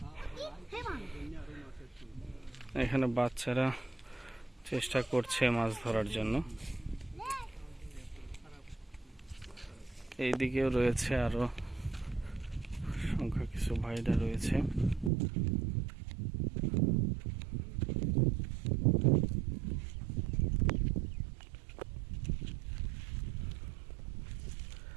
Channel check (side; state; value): left; drops out; at 15.1 s